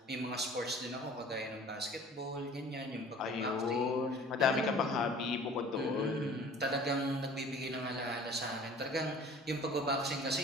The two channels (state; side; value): normal; both; correlation 0.47